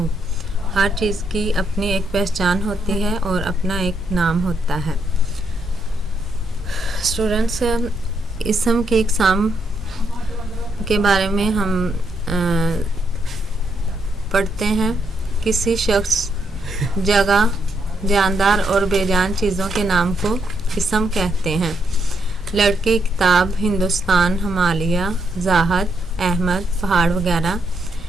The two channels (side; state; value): both; normal; correlation 0.78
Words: हर चीज़ की अपनी एक पहचान होती है और अपना एक नाम होता है। स्टूडेंट्स, इसम की इकसाम के बारे में हम पढ़ते हैं। किसी शख्स, जगह, जानदार और बेजान चीज़ों के नाम को इसम कहते हैं। लड़की, किताब, हिंदुस्तान, हिमालय, ज़ाहद, अहमद, पहाड़ वगैरह,